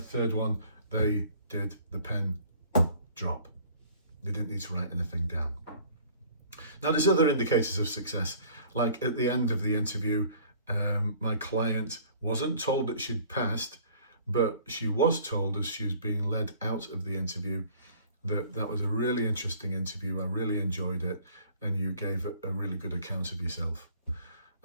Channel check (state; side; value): inverted; both; correlation -0.52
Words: one, they did the pen drop. They didn't need to write anything down. Now, there's other indicators of success. Like at the end of the interview, my client wasn't told that she'd passed, but she was told as she was being led out of the interview that was a really interesting interview. I really enjoyed it, and you gave a really good account of yourself.